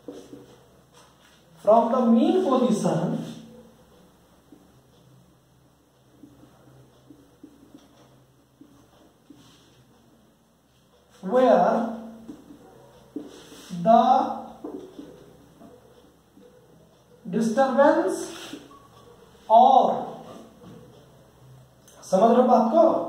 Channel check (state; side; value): identical; both; correlation 1.00